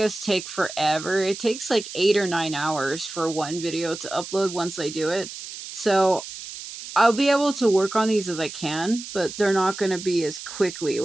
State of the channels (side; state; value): right; noise; hiss, 11 dB below the sound